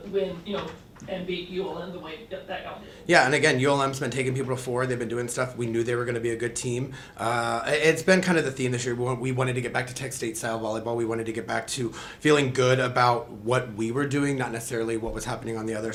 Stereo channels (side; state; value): both; identical; correlation 1.00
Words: win, and beat ULM the way that y'all did? Yeah, and again, ULM's been taking people forward. They've been doing stuff. We knew they were going to be a good team. It's been kind of the theme this year. We wanted to get back to Tech State style volleyball. We wanted to get back to feeling good about what we were doing, not necessarily what was happening on the other